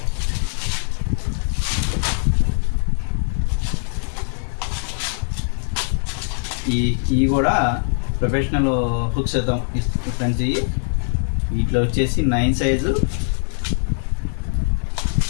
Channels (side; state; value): right; silent; digital silence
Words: ఇవి కూడా ప్రొఫెషనల్ హుక్స్ అవుతాం ఫ్రెండ్స్. వీటిలో వచ్చేసి 9 సైజు,